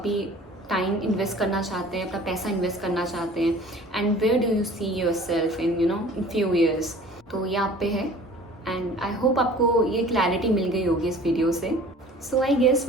टाइम इन्वेस्ट करना चाहते हैं, अपना पैसा इन्वेस्ट करना चाहते हैं, and where do you see yourself in in few years. तो ये आप पे है, एंड आई होप आपको ये क्लैरिटी मिल गई होगी इस वीडियो से। So I guess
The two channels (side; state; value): both; normal; correlation 0.46